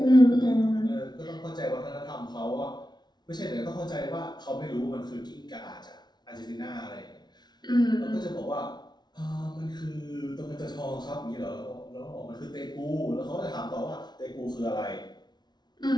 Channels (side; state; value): right; late; 0.20 ms